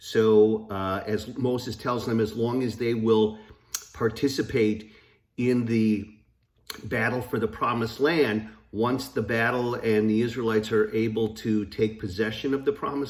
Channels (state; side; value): identical; both; correlation 1.00